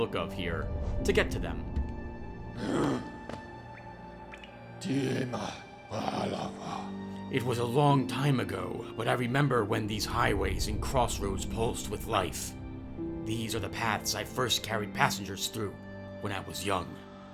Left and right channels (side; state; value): both; identical; correlation 1.00